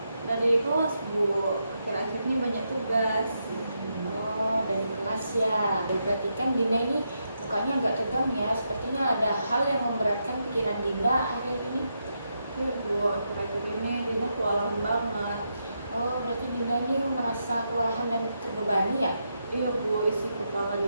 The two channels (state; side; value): inverted; both; correlation -0.83